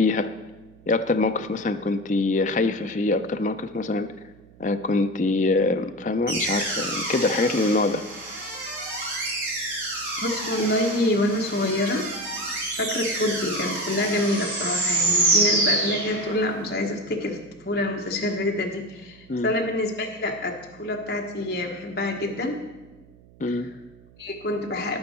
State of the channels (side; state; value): right; noise; hum, 25 dB below the sound